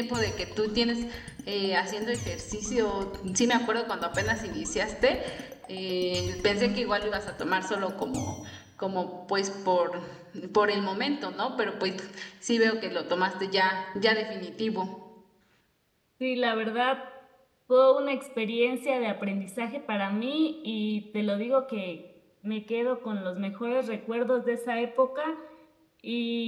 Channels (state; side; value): identical; both; correlation 1.00